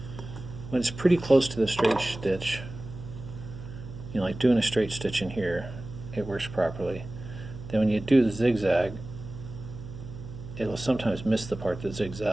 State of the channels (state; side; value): noise; right; hum, 12 dB below the sound